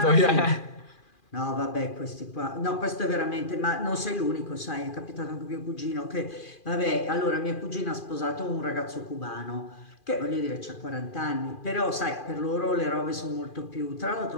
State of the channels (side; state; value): right; late; 2.4 ms